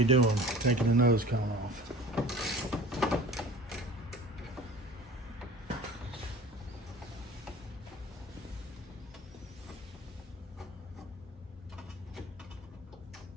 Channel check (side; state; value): both; normal; correlation 0.42